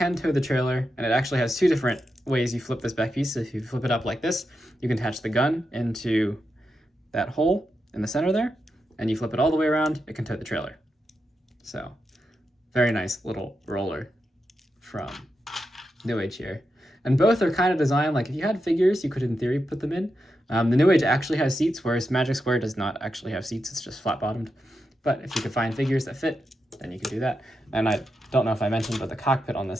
tow the trailer, and it actually has two different ways you flip this back piece. So if you flip it up like this, you can attach the gun into that hole in the center there, and you flip it all the way around, it can tow the trailer. So, very nice little roller from New Age here. And both are kind of designed, like if you had figures, you could in theory put them in. The New Age actually has seats, whereas Magic Square does not actually have seats, it's just flat bottomed. But if you could find figures that fit, then you can do that. And I don't know if I mentioned, but the cockpit on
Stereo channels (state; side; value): normal; both; correlation 0.87